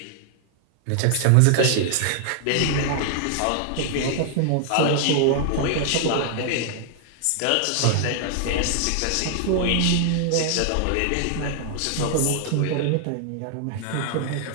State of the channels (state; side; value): different; both; correlation 0.00